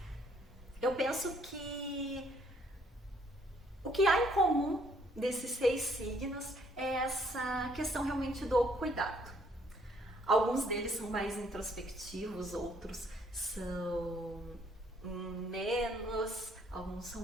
Eu penso que o que há em comum desses 6 signos é essa questão realmente do cuidado. Alguns deles são mais introspectivos, outros são menos, alguns são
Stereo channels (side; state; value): both; normal; correlation 0.65